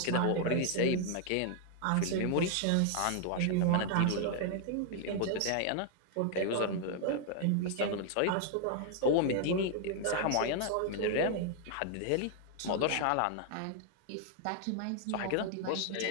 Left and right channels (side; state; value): both; different; correlation 0.00